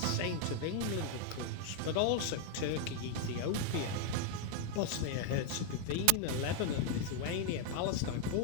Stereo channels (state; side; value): different; both; correlation 0.00